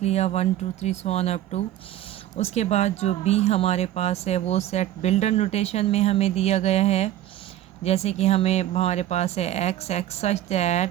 लिया 1 2 3 सो ऑन अप टू। उसके बाद जो बी हमारे पास है वो सेट बिल्डर नोटेशन में हमें दिया गया है। जैसे कि हमारे पास है x x such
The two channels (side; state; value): left; quieter; 13.0 dB